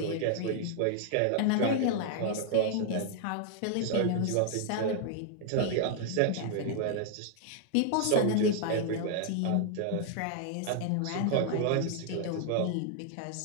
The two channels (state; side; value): different; both; correlation 0.00